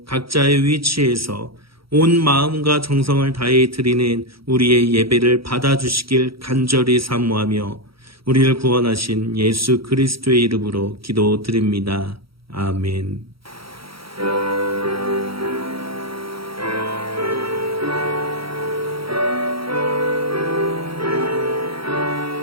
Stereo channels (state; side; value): late; left; 0.75 ms